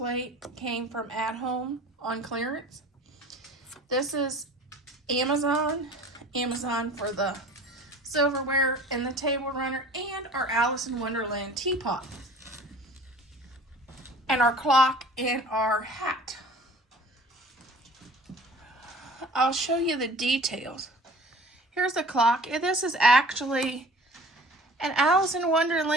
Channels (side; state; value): both; normal; correlation 0.45